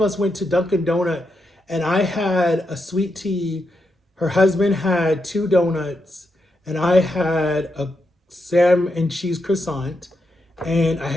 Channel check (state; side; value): normal; both; correlation 0.84